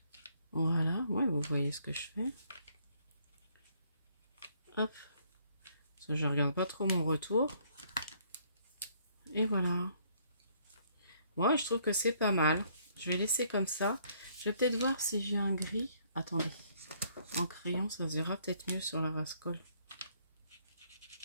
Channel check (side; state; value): both; inverted; correlation -0.65